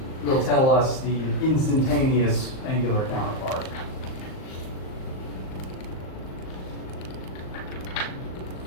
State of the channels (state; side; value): late; right; 38 ms